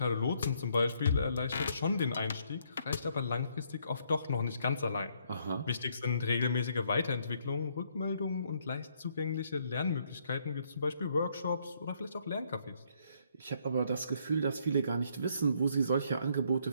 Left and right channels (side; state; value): both; inverted; correlation -0.70